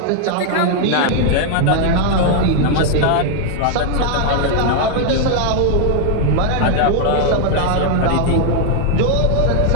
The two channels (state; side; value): different; both; correlation 0.00